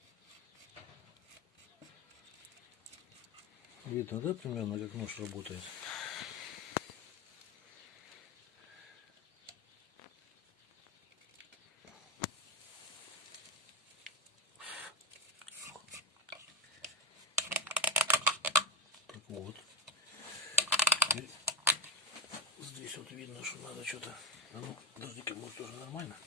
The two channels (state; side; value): normal; both; correlation 0.12